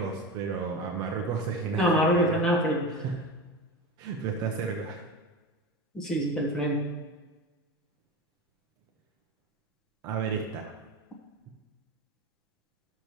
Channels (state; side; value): normal; both; correlation 0.26